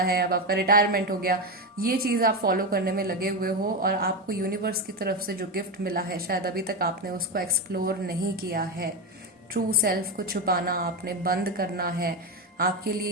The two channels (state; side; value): normal; both; correlation 0.13